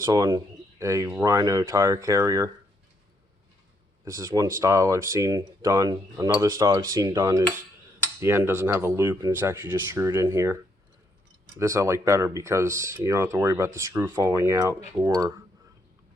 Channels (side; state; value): both; normal; correlation 0.74